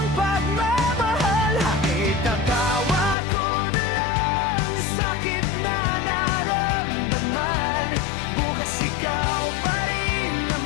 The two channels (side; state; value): right; drops out; at 3.2 s